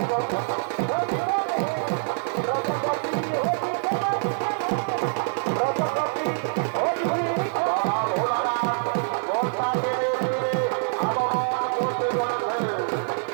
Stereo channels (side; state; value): left; silent; 60 dB below the other